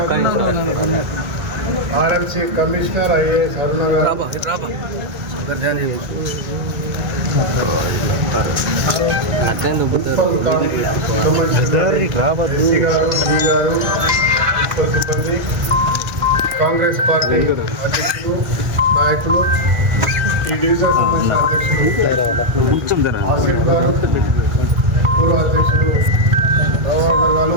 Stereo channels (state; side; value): late; left; 1.7 ms